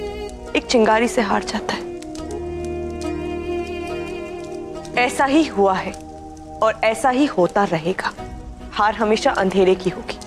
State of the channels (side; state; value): both; identical; correlation 1.00